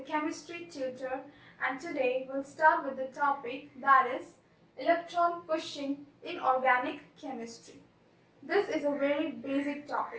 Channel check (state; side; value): identical; both; correlation 1.00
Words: chemistry tutor, and today we'll start with the topic that is electron pushing in organic chemistry. This is a very basic